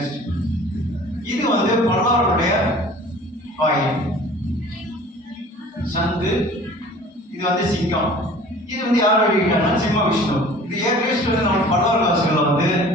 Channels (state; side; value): normal; both; correlation 0.46